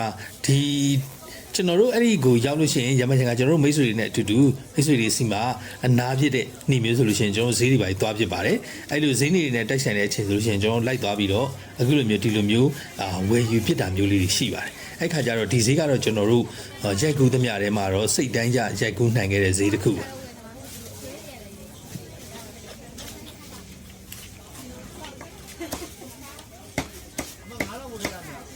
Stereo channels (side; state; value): both; identical; correlation 1.00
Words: ှာဒီကျွန်တော်တို့အဲ့ဒီကိုရောက်လို့ရှိရင်ရမချင်ကကျွန်တော်တို့မိတ်ဆွေတွေနဲ့အတူတူမိတ်ဆွေတွေစီမှာအနာဖြစ်တဲ့နှီးမျိုးဆိုလို့ရှိရင်ကျွန်တော်ဈေးတွေပါသွားဖြစ်ပါတယ်အဲ့လိုဈေးနေတွေနဲ့တိုက်ဆိုင်တဲ့အချိန်ဆိုလို့ရှိရင်ကျွန်တော်လိုက်သွားပြီးတော့အခုလိုမျိုးဒီလိုမျိုးဝယ်ယူဖြစ်တာမျိုးလေးတွေရှိပါတယ်အဲ့ခါကျတော့ဒီဈေးကတော့ကျွန်တော်တို့ရိုက်ကူးသမျှထဲမှာတော့စိတ်တိုင်းကြရိုက်ကူးနိုင်ခဲ့တဲ့ဈေးတစ်ခုပါ